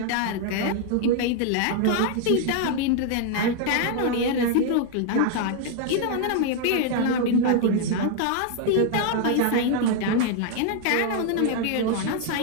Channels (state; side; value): different; both; correlation 0.00